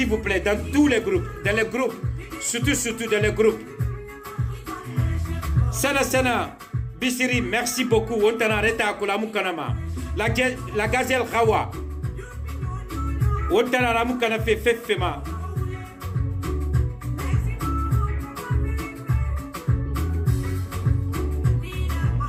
vous plaît dans tous les groupes, dans les groupes. Surtout dans les groupes. Sana Bissiri, merci beaucoup. On t'a arrêté à Kolamukanama. La gazelle Rawa. On t'a arrêté à Fefema.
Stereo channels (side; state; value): both; identical; correlation 1.00